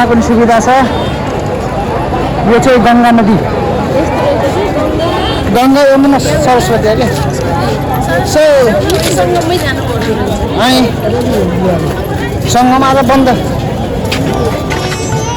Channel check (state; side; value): identical; both; correlation 1.00